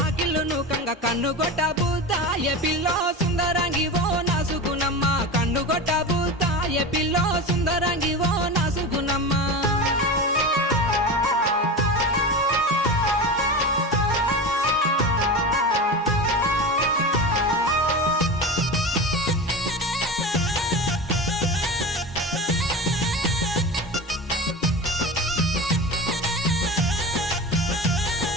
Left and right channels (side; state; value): both; normal; correlation 0.27